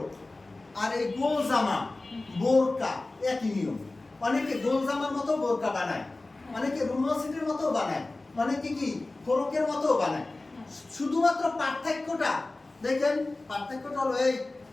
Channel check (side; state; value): right; quieter; 3.1 dB